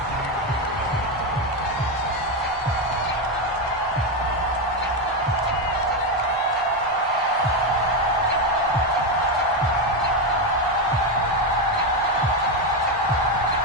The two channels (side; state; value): both; normal; correlation 0.09